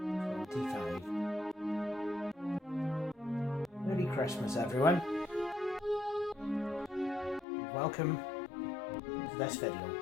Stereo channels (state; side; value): drops out; right; at 7.5 s